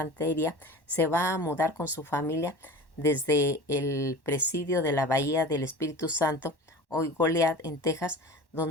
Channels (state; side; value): late; right; 1.1 ms